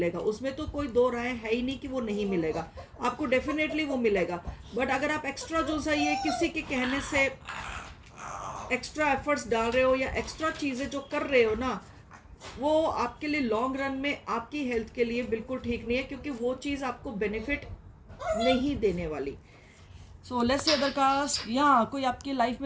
उसमें तो कोई दो राय है ही नहीं कि वो नहीं मिलेगा, आपको डेफिनेटली वो मिलेगा। बट अगर आप एक्स्ट्रा जो सा ये किसी के कहने से एक्स्ट्रा एफर्ट्स डाल रहे हो या एक्स्ट्रा चीज़ें जो कर रहे हो ना, वो आपके लिए लॉन्ग रन में आपकी हेल्थ के लिए बिल्कुल ठीक नहीं है, क्योंकि वो चीज़ आपको बेनिफिट नहीं देने वाली। So let's say other caste, या कोई आपकी लाइफ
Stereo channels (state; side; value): identical; both; correlation 1.00